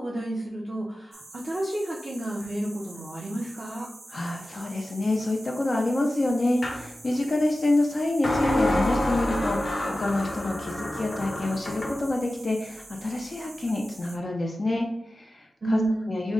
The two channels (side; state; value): both; normal; correlation 0.95